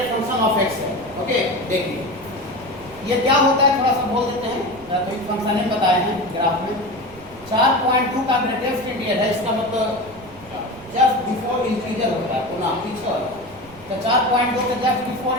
function of x है। ओके, देखिए ये क्या होता है थोड़ा सा बोल देते हैं, तो एक फंक्शन ने बताए हैं ग्राफ में। 4.2 का ग्रेटेस्ट इंटीजर है, इसका मतलब जस्ट बिफोर इंटीजर होता है, पुनः पीछे होता है। तो 4.2 के जस्ट बिफोर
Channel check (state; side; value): noise; right; rumble, 23 dB below the sound